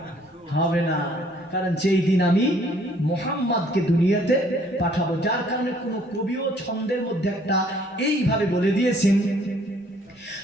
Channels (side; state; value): both; normal; correlation 0.61